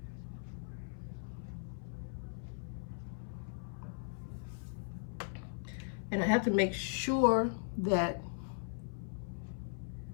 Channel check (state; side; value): silent; right; 52 dB below the other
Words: And I have to make sure that